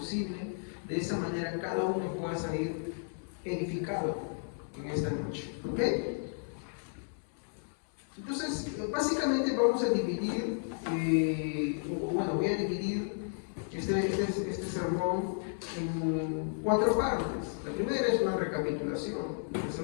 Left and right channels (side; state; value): right; silent; digital silence